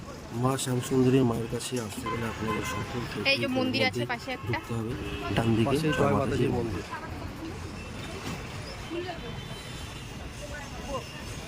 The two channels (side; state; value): both; identical; correlation 1.00